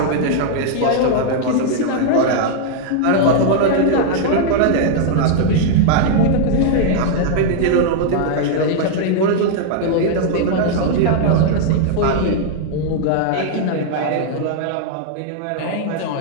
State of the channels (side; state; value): both; different; correlation -0.01